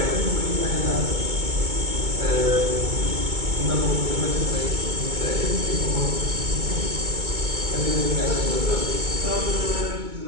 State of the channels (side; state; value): left; late; 2.2 ms